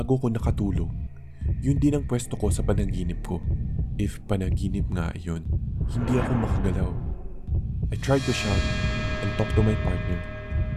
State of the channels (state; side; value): identical; both; correlation 1.00